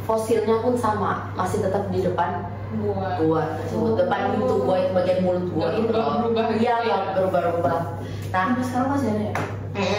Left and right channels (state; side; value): identical; both; correlation 1.00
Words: fosilnya pun sama, masih tetap di depan gua tersebut, depan pintu gua itu bagian mulut gua itu iya nggak berubah-ubah. Nah sekarang masih ada ya?